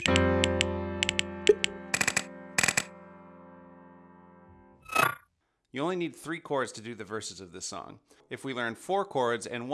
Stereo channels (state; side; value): identical; both; correlation 1.00